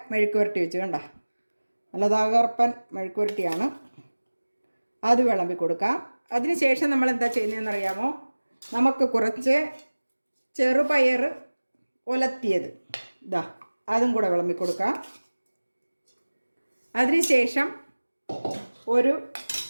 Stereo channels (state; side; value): inverted; both; correlation -1.00